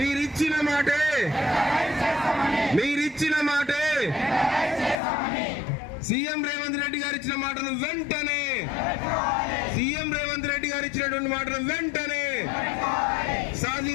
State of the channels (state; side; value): drops out; right; at 5.0 s